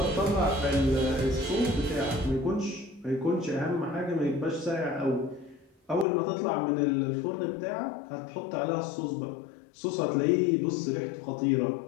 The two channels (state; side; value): drops out; right; at 6.1 s